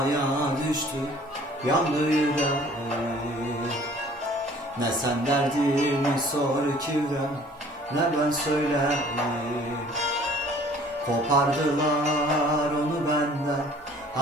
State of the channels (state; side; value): normal; both; correlation 0.53